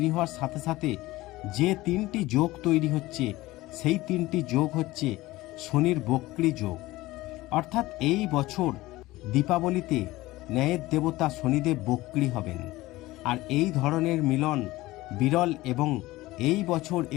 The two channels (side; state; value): right; quieter; 18.5 dB